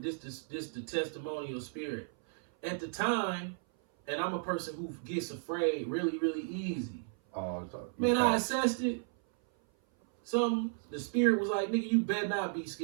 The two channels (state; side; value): silent; left; 55 dB below the other